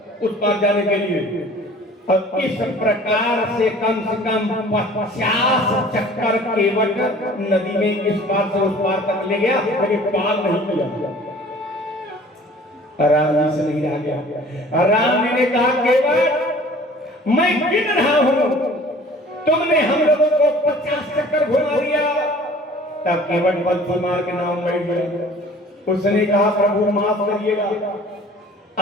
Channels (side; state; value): both; normal; correlation 0.49